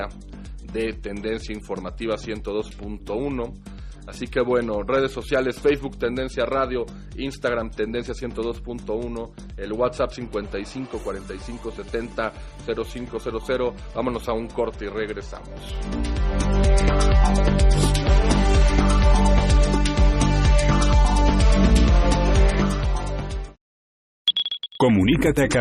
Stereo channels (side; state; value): both; identical; correlation 1.00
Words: de Tendencia Informativa 102.1. Así que bueno, redes sociales, Facebook Tendencia Radio, Instagram Tendencia 102.1, el WhatsApp 55 45 70 0500. Vámonos a un corte y regresamos. Comunícate a